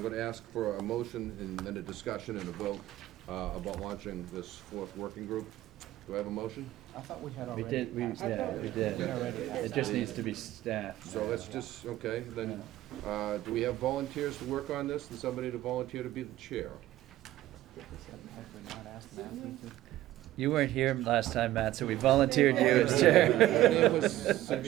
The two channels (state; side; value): quieter; left; 14.8 dB